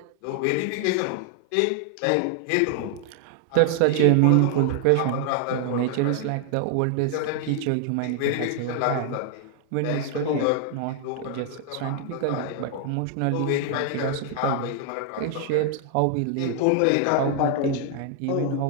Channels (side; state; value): both; different; correlation 0.00